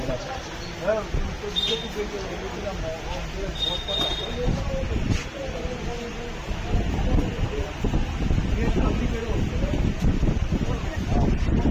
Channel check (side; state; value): both; identical; correlation 1.00